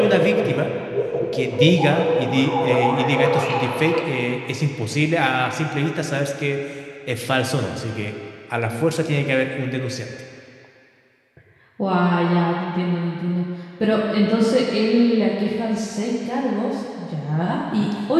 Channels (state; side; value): identical; both; correlation 1.00